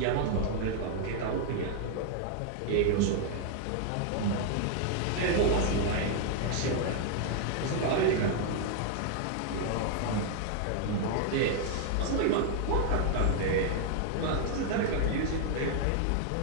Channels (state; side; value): different; both; correlation 0.00